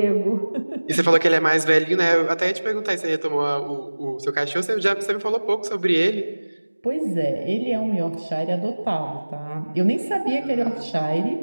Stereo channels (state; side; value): inverted; both; correlation -1.00